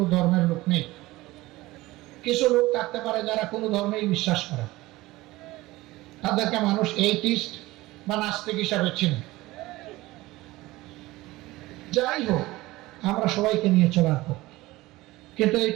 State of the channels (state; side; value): quieter; left; 19.0 dB